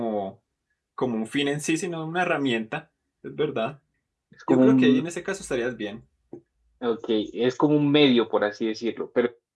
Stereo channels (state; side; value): identical; both; correlation 1.00